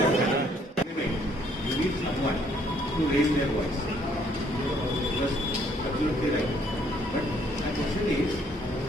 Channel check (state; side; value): normal; both; correlation 0.65